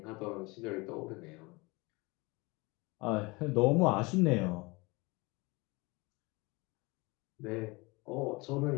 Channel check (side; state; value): right; quieter; 25.3 dB